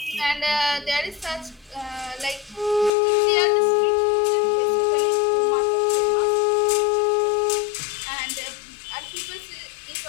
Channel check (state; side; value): drops out; right; at 2.9 s